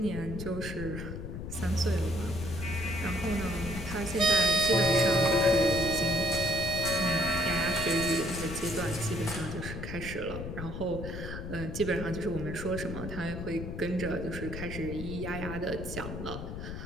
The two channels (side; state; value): left; noise; rumble, 7 dB below the sound